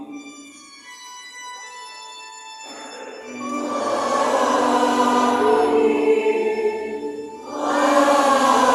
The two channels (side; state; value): both; identical; correlation 1.00